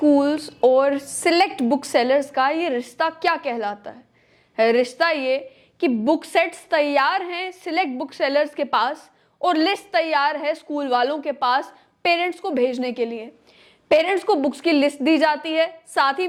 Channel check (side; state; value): both; identical; correlation 1.00